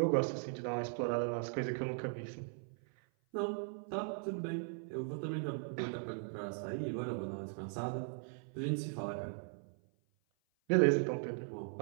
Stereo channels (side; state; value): left; silent; 52 dB below the other